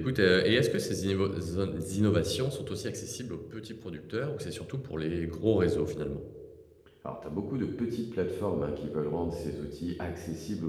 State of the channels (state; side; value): identical; both; correlation 1.00